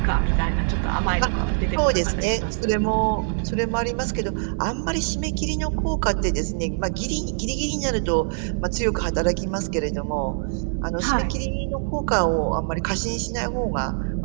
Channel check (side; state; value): left; silent; digital silence